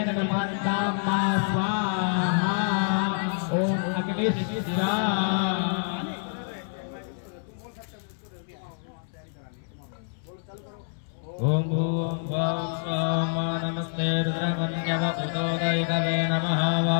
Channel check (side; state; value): right; silent; 60 dB below the other